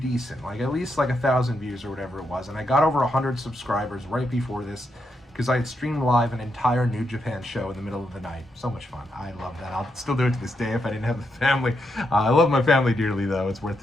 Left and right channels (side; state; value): both; normal; correlation 0.82